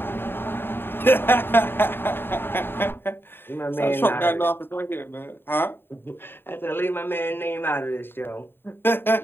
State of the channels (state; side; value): late; right; 0.10 ms